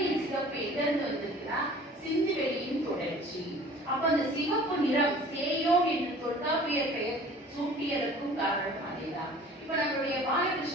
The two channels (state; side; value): normal; both; correlation 0.47